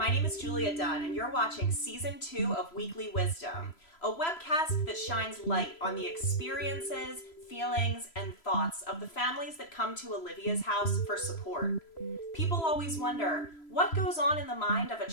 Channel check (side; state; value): right; late; 3.0 ms